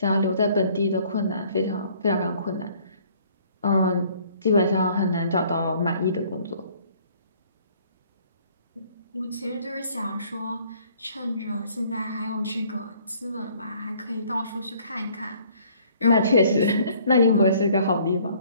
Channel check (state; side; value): inverted; both; correlation -0.59